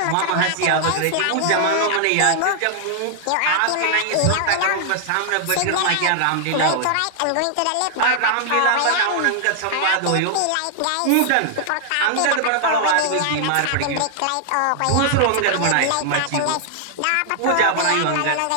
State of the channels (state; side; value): different; both; correlation -0.01